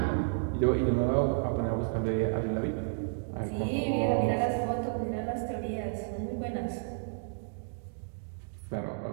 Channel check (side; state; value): left; silent; digital silence